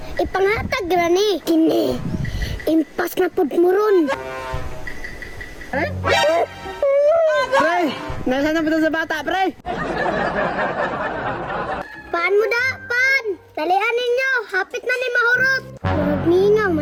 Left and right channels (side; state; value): both; identical; correlation 1.00